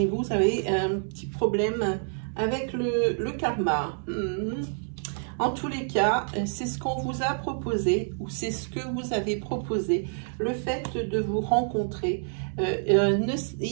vous avez un petit problème avec le karma. En tous les cas, c'est ce qu'on vous a proposé, ou c'est ce que vous avez proposé, le fait de vous rencontrer.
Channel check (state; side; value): silent; left; digital silence